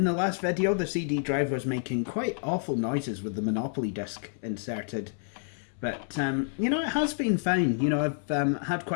last video, the CD drive was making quite awful noises with the Monopoly disc inserted. But, you know, it has been fine. You know, I've had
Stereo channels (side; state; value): right; silent; 59 dB below the other